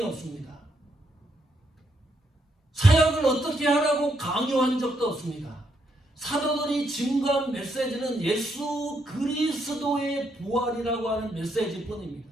없습니다. 사역을 어떻게 하라고 강요한 적도 없습니다. 사도들이 증거한 메시지는 예수 그리스도의 부활이라고 하는 메시지뿐입니다.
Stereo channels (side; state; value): both; normal; correlation 0.77